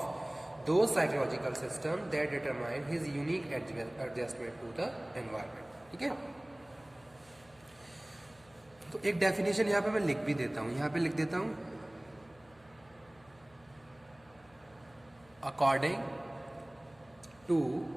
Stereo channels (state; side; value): noise; left; hum, 28 dB below the sound